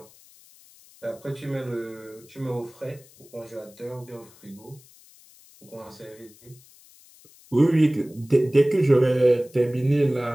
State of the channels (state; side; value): noise; left; hiss, 25 dB below the sound